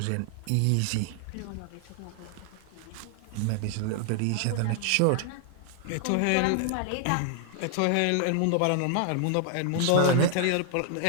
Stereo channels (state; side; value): different; both; correlation 0.00